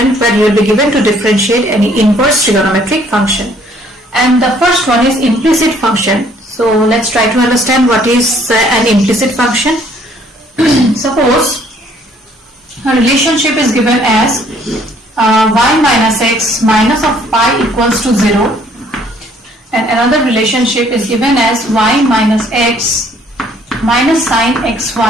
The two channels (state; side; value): normal; both; correlation 0.61